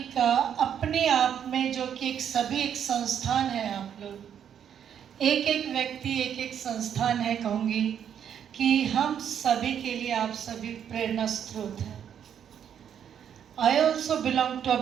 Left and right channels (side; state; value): left; quieter; 8.8 dB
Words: का अपने आप में जो कि एक सभी एक संस्थान है. आप लोग एक एक व्यक्ति एक एक संस्थान है. कहूँगी कि हम सभी के लिए आप सभी प्रेरणा स्रोत हैं. I also belong to a